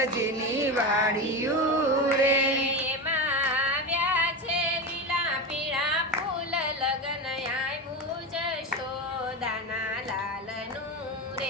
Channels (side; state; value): both; normal; correlation 0.20